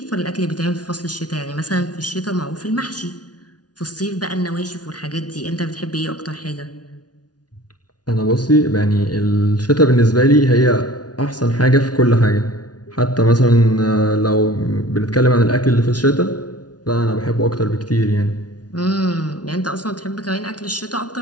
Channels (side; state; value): right; late; 0.69 ms